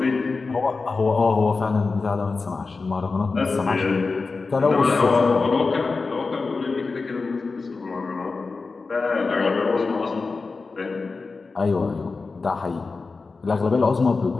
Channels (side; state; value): right; quieter; 4.1 dB